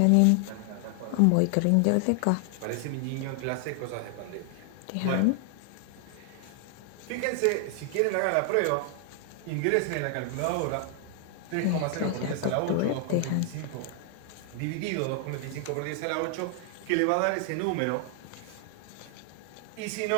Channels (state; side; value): different; both; correlation 0.00